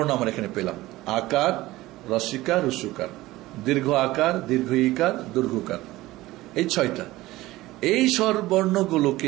আমরা এখানে পেলাম। আকার, রস্বীকার, রস্যকার, দীর্ঘ আকার, দীর্ঘ ইকার, দীর্ঘকার, এই 6টা। এই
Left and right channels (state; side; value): quieter; left; 17.8 dB